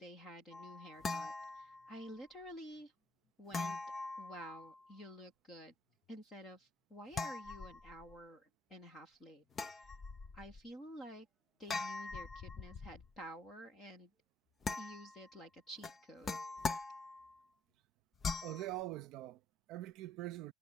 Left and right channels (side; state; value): both; normal; correlation 0.70